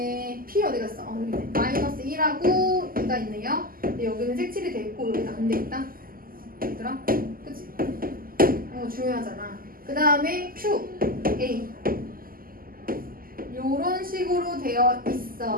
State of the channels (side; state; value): left; late; 0.42 ms